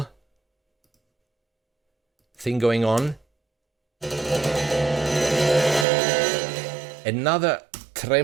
thing going on. Another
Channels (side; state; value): left; drops out; at 5.9 s